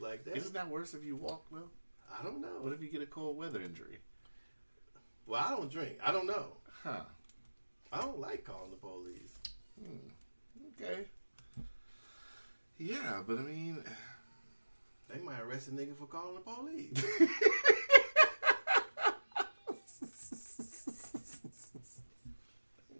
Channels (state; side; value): inverted; both; correlation -1.00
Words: like that. Isn't that worse if you walk though? I don't know. What if you get a cold weather injury? Well, I don't drink. I don't know. Huh. I don't like calling the police. Okay. Yeah, but I mean... They might arrest a nigga for calling the police.